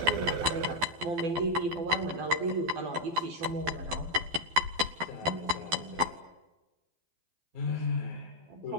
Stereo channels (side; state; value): left; late; 12 ms